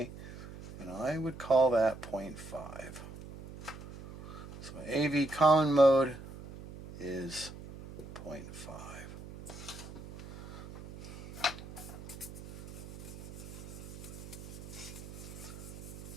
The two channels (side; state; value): right; noise; hum, 13 dB below the sound